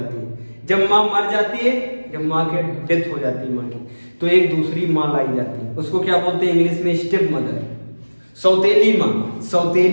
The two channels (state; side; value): inverted; both; correlation -1.00